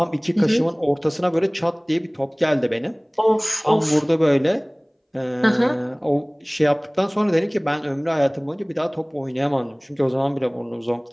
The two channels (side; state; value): both; identical; correlation 1.00